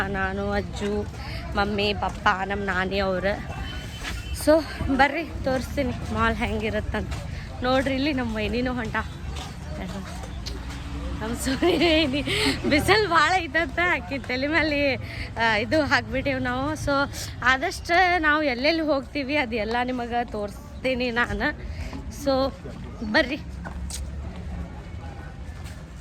ನಾನು, ಅಜ್ಜು, ಮಮ್ಮಿ, ಪಪ್ಪ, ನಮ್ಮ ನಾನಿ ಅವರು. ಸೊ ಬರ್ರಿ ತೋರಿಸ್ತೀನಿ ಮಾಲ್ ಹೆಂಗಿರುತ್ತಂತ. ನೋಡ್ರಿ, ಇಲ್ಲಿ ನಮ್ಮ ವೈನಿನೂ ಹೊಂಟ. ನಮ್ಮ ಸುನಿ ಬಿಸಿಲು ಭಾಳ ಐತಂತ ಆಕಿ ತಲೆ ಮೇಲೆ ಇದು ಹಾಕ್ಬಿಟ್ಟೇವು ನಾವು. ಸೊ ಆದಷ್ಟು ನಾವು ಎಲ್ಲೆಲ್ಲಿ ಹೋಗ್ತೀವಿ ಅದೆಲ್ಲ ನಿಮಗೆ ತೋರಿಸ್ತೀನಿ ನಾನು. ಸೊ ಬರ್ರಿ.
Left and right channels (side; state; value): both; identical; correlation 1.00